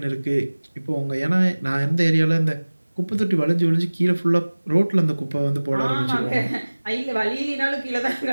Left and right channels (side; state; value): both; inverted; correlation -1.00